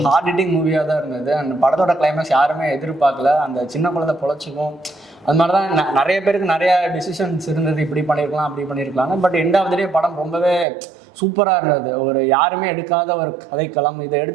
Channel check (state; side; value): drops out; left; at 10.7 s